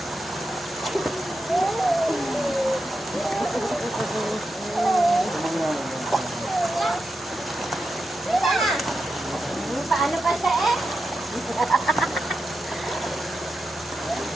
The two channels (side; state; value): both; normal; correlation 0.88